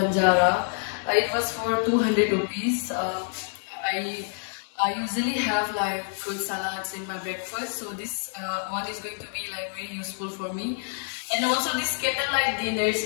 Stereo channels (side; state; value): right; silent; digital silence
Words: It was for 200 rupees. I usually have like fruit salads in my breakfast, so this one is going to be like very useful for me. And also this candlelight dinners,